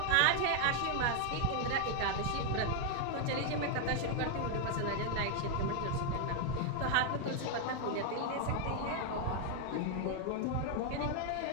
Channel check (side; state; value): both; different; correlation 0.00